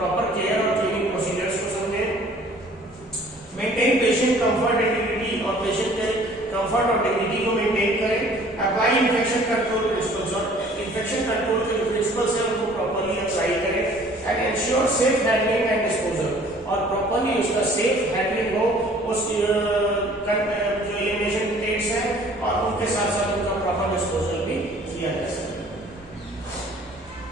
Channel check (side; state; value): both; normal; correlation 0.53